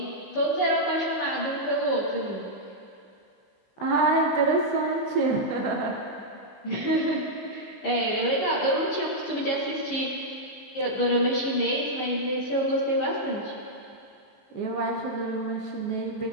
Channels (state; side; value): late; right; 15 ms